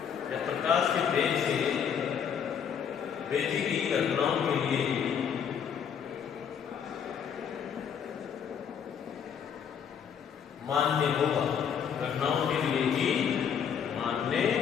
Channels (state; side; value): quieter; right; 7.7 dB